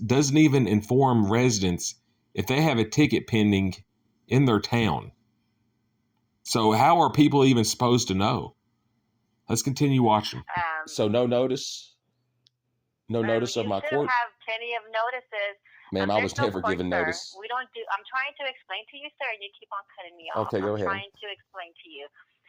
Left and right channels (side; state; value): both; identical; correlation 1.00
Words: even inform residents if they have a ticket pending in their town. So how are people even supposed to know? Let's continue watching. So no notice? No notice of my court? You have plenty of notices. Ma'am, I was never given notice. We don't do. I'm trying to explain to you, sir, and you keep on cutting me off. Okay, go ahead. I'm trying to explain to you.